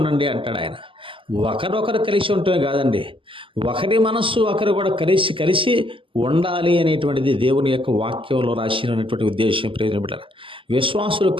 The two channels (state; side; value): late; left; 0.25 ms